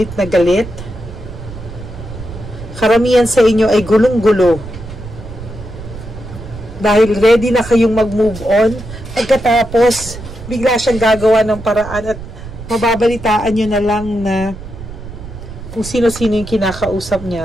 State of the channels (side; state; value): right; noise; rumble, 13 dB below the sound